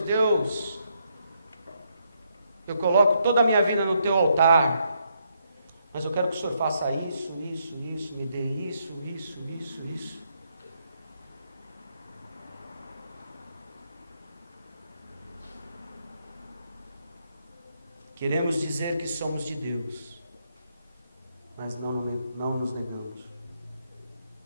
Deus, eu coloco toda a minha vida no teu altar, mas eu quero que o Senhor faça isso, me dê isso. Queremos dizer que somos de Deus, mas não nos negamos.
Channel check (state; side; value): inverted; both; correlation -0.76